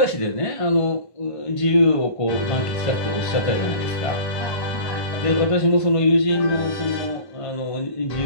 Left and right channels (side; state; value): right; late; 1.1 ms